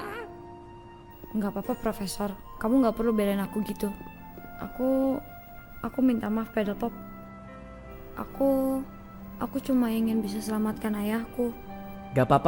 Nggak apa-apa, Profesor. Kamu nggak perlu belain aku gitu. Aku minta maaf, Pedal Pop. Aku cuma ingin bisa selamatkan ayahku. Gak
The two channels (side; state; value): both; identical; correlation 1.00